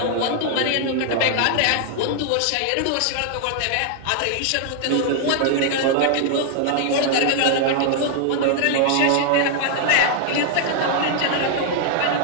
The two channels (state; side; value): different; both; correlation 0.00